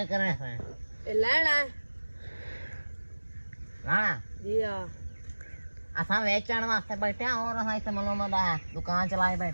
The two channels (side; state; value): both; inverted; correlation -1.00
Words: करे है ए लेना हां जी हां असा वेचण वास्ते बैठे और असा इथे मलोमदा दुकान चलाए